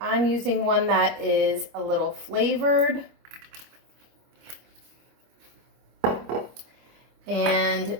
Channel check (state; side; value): late; left; 25 ms